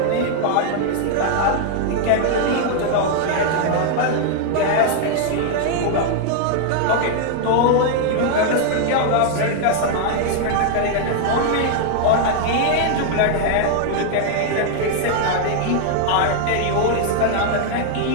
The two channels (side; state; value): both; different; correlation 0.00